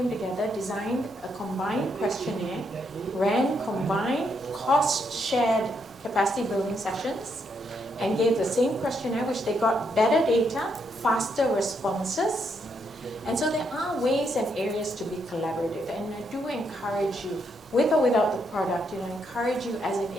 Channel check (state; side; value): normal; both; correlation 0.77